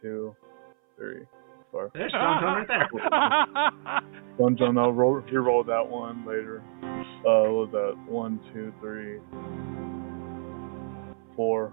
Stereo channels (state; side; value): silent; left; 59 dB below the other